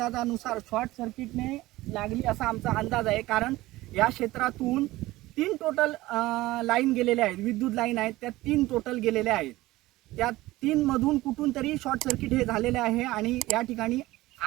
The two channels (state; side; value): quieter; left; 18.0 dB